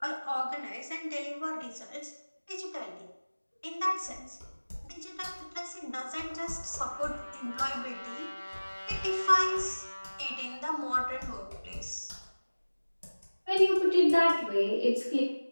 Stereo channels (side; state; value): both; inverted; correlation -1.00